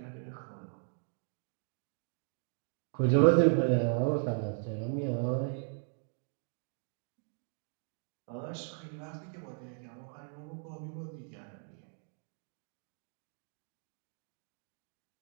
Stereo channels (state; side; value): silent; left; 53 dB below the other